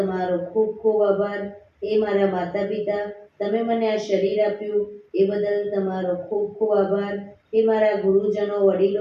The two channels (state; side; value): identical; both; correlation 1.00